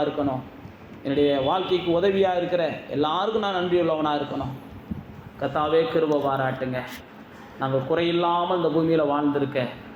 இருக்கணும். என்னுடைய வாழ்க்கைக்கு உதவியாக இருக்கிற எல்லாருக்கும் நான் நன்றியுள்ளவனாக இருக்கணும். கர்த்தாவே கிருபை பாராட்டுங்க. நாங்கள் குறையில்லாமல் இந்த பூமியில் வாழ்ந்திருக்க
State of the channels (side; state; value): both; identical; correlation 1.00